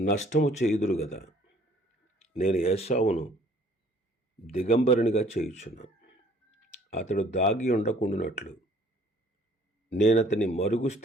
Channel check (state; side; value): normal; both; correlation 0.57